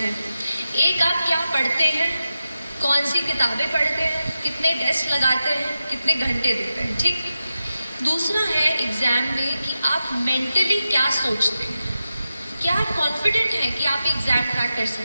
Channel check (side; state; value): both; inverted; correlation -0.91